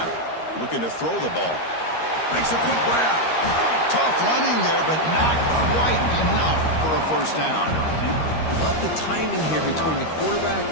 Looking to throw the ball. Makes a quick grab. Tough running there, but not quite enough for a first down. Love the timing here between the quarterback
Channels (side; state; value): right; late; 13 ms